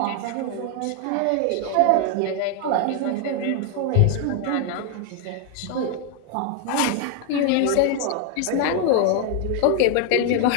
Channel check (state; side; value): different; both; correlation 0.01